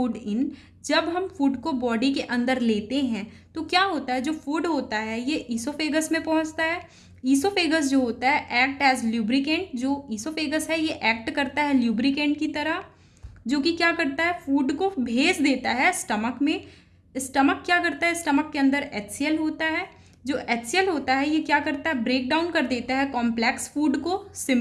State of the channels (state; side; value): identical; both; correlation 1.00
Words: in, जब हम फूड को बॉडी के अंदर लेते हैं तो क्या होता है, जो फूड होता है ये ईसोफेगस में पहुँचता है। ईसोफेगस जो होता है एक्ट एज ल्यूब्रिकेंट, जो ईसोफेगस है ये एक्ट करता है ल्यूब्रिकेंट की तरह, जो कि क्या करता है, फूड को भेज देता है स्टमक में। स्टमक क्या करता है, स्टमक के अंदर HCl होता है, जो HCl होता है ये क्या करता है, ब्रेक डाउन कर देता है कॉम्प्लेक्स फूड को